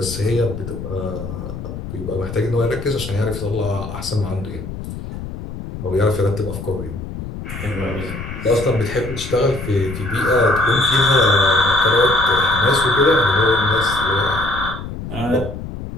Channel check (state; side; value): noise; left; rumble, 9 dB below the sound